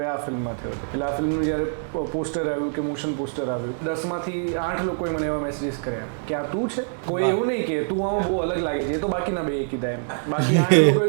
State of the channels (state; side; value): silent; left; digital silence